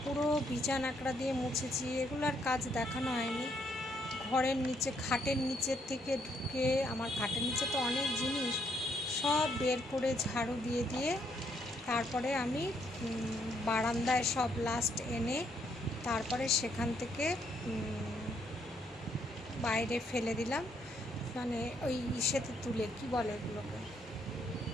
পুরো বিছানাকড়া দিয়ে মুছেছি। এগুলো আর কাজ দেখানো হয়নি। ঘরের নিচে, খাটের নিচের থেকে ঢুকে, আমার খাটের নিচে তো অনেক জিনিস, সব বের করে ঝাড়ু দিয়ে দিয়ে তারপরে আমি বারান্দায় সব লাস্ট এনে তারপরে সেখান থেকে বাইরে ফেলে দিলাম। মানে ওই ইসেতে তুলে, কি বলে এগুলোকে,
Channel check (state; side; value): normal; both; correlation 0.72